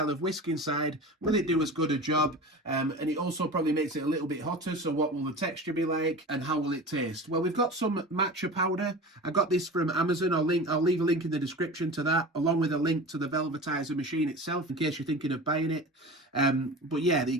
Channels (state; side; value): normal; both; correlation 0.33